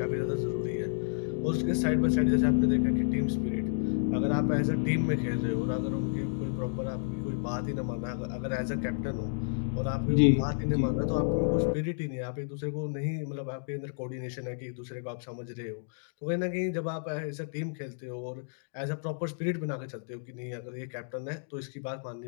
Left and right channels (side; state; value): right; silent; digital silence